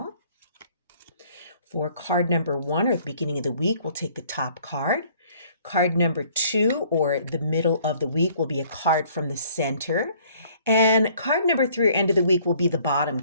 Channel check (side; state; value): both; inverted; correlation -0.58